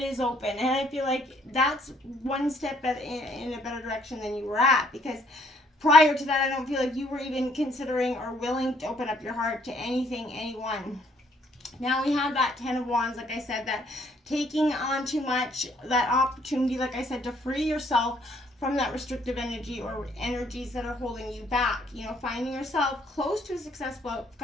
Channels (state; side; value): normal; both; correlation 0.65